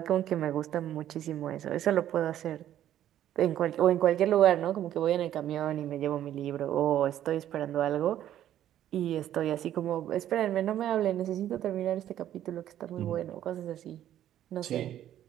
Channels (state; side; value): quieter; left; 11.7 dB